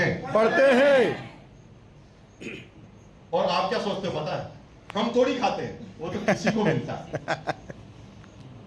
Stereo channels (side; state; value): both; identical; correlation 1.00